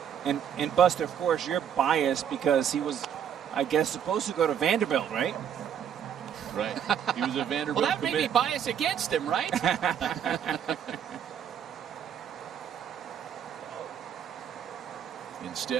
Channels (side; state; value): left; quieter; 8.8 dB